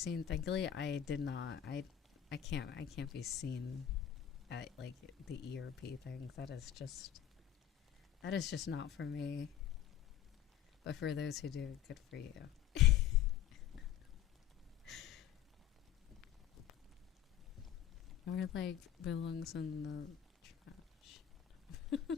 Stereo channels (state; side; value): quieter; right; 10.5 dB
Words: Thankfully, I did not. I can't be seen like the ERP thing. That is just not for me. But for those who do, good for you. Or like belongs in the trash.